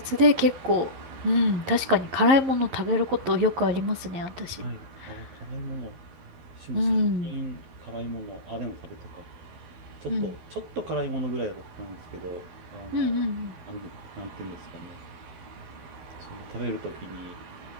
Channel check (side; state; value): left; late; 11 ms